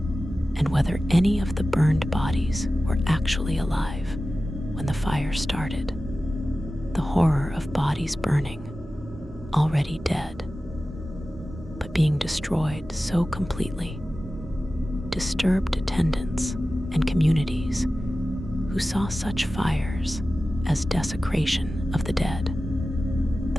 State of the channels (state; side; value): normal; both; correlation 0.95